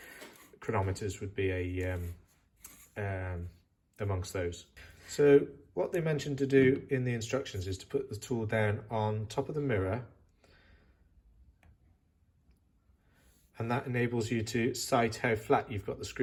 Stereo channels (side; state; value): both; identical; correlation 1.00